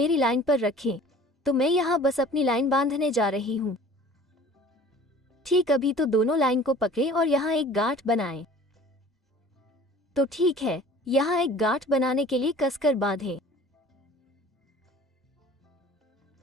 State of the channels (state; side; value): normal; both; correlation 0.46